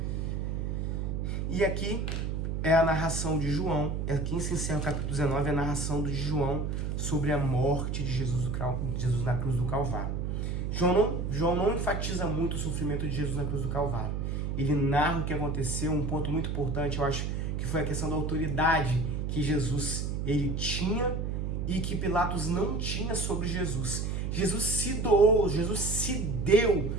E aqui é a narração de João, aqui se encerra o capítulo 19, a narração de João sobre a morte de Jesus na cruz do Calvário. João não enfatiza muito o sofrimento de Jesus na cruz do Calvário. Ele narra o que aconteceu, um ponto muito importante, eu acho, que foi a questão da autoridade que Jesus ele tinha e que Pilatos não tinha sobre Jesus. Jesus se doou, Jesus se deu,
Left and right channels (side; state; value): right; noise; hum, 1 dB below the sound